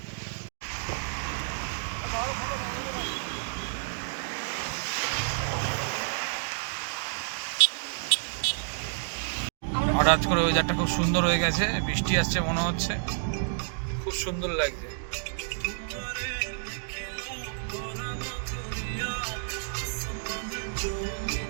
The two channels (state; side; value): silent; left; digital silence